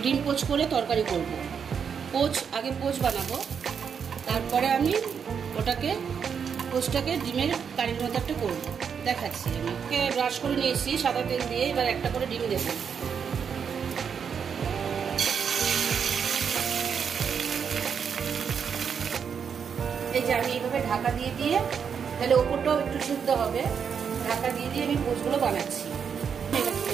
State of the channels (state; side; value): quieter; left; 6.9 dB